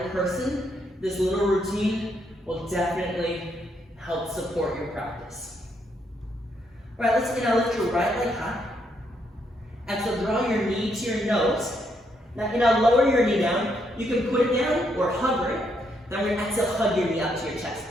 person. This little routine will definitely help support your practice. All right, let's lift your right leg high. And so draw your knee to your nose. Now lower your knee down. You can put it down or hover it. Then we're going to exhale, hug your knee up to your chest.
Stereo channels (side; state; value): both; normal; correlation 0.75